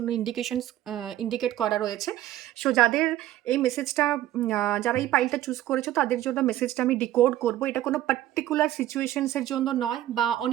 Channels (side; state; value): left; quieter; 13.6 dB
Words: ইন্ডিকেট করা রয়েছে। সো যাদের এই মেসেজটা, যারা এই পাইলটা চুজ করেছো, তাদের জন্য মেসেজটা আমি ডিকোড করব। এটা কোনো পার্টিকুলার সিচুয়েশনসের জন্য নয়, বা